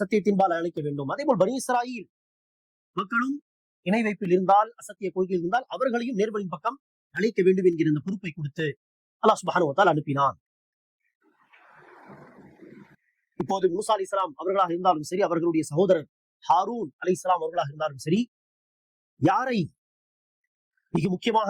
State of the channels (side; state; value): both; identical; correlation 1.00